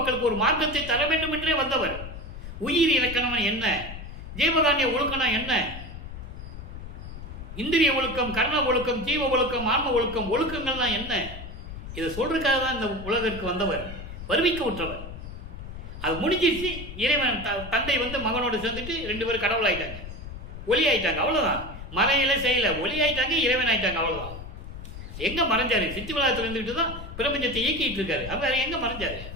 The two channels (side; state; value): left; noise; rumble, 11 dB below the sound